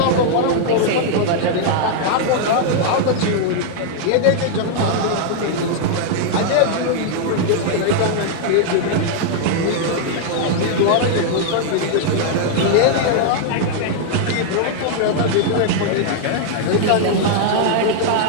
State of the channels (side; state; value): both; different; correlation -0.01